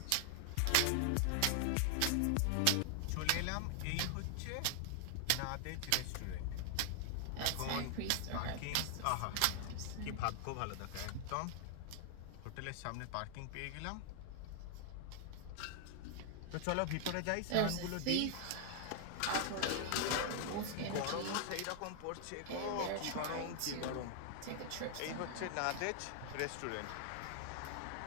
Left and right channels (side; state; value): both; different; correlation 0.00